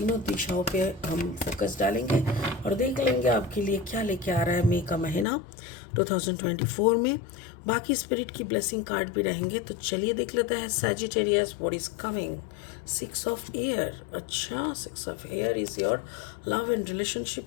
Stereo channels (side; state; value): right; drops out; at 5.2 s